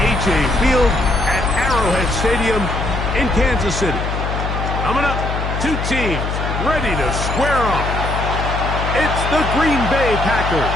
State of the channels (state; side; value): noise; left; hum, 3 dB below the sound